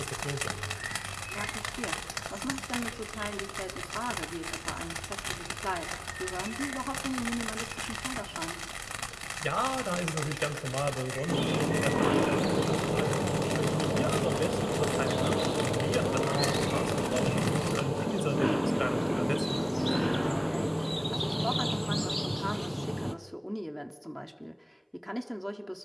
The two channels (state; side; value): identical; both; correlation 1.00